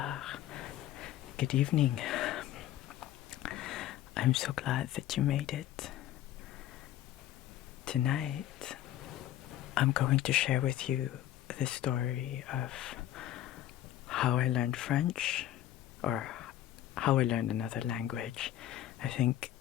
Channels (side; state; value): right; quieter; 12.7 dB